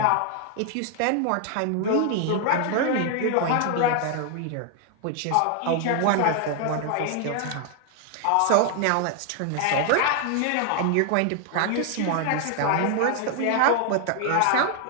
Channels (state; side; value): different; both; correlation 0.00